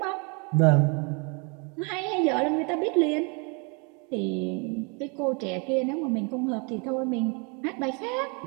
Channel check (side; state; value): left; quieter; 33.6 dB